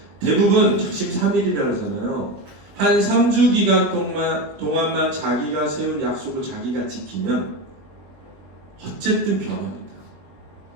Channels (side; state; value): left; late; 20 ms